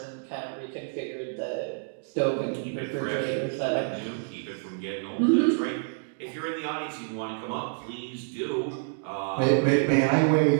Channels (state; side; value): silent; left; digital silence